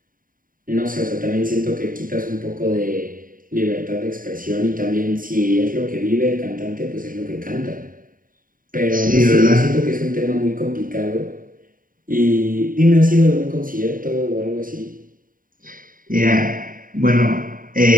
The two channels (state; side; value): late; left; 0.40 ms